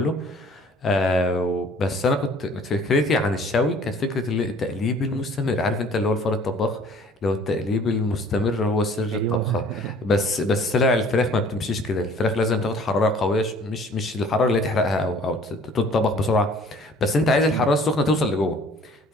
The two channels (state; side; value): normal; both; correlation 0.53